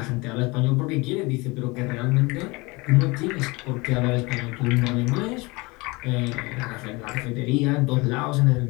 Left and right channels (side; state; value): right; quieter; 24.9 dB